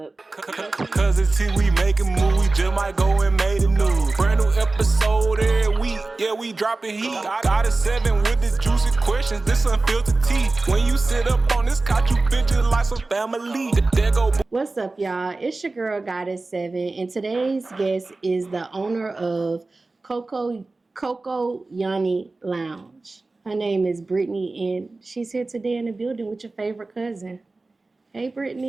Cuz it's see we making move, we just might go and make the news. Brand new episode every week, yeah, we dropping heat. Got a 7 with the juicy questions, this unfiltered tea. When you sit up on this couch, you feel just like some family. There go. What's up, y'all? It's your girl, Goddess 7, and today's guest is the owner of Coco Lounge. Her name is Brittany, and she's here today in the building with your favorite cousin. Hey,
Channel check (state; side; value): quieter; left; 3.4 dB